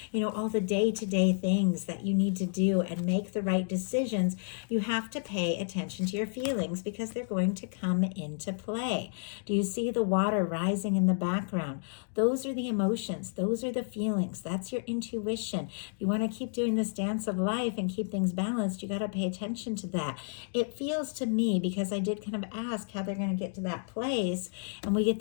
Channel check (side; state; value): right; silent; digital silence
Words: all the day-to-day things that you need to do and make the right decisions, you have to pay attention to your feelings because they're going to come into play. Do you see the water rising in the background? Those are the emotions. Those are the feelings. That's your intuition. If you want to keep doing this dance of life and keep things balanced, you got to pay attention to that. It feels to me, because I did kind of ask how they're going to get to that place, and we get